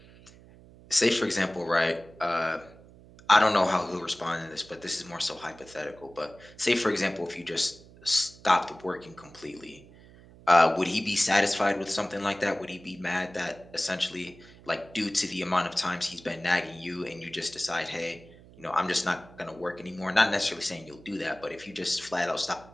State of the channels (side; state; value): right; noise; hum, 22 dB below the sound